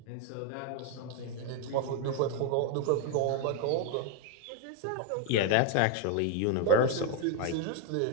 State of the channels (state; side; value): different; both; correlation 0.01